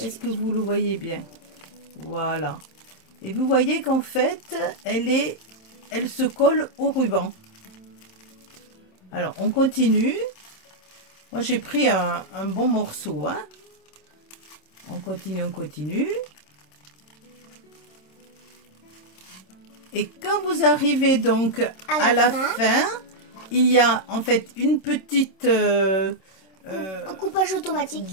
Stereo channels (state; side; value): late; right; 27 ms